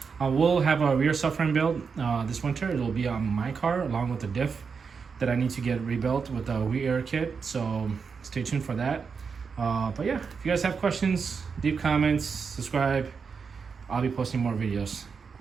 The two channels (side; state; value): left; quieter; 5.6 dB